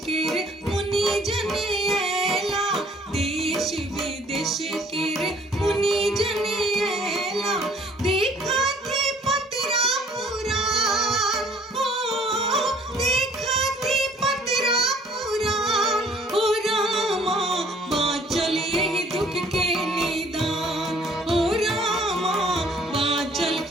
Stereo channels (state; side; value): normal; both; correlation 0.57